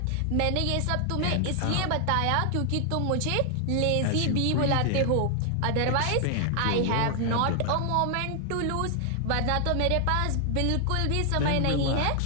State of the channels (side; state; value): both; different; correlation 0.00